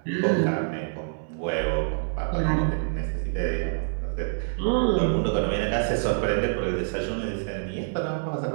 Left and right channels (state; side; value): silent; left; digital silence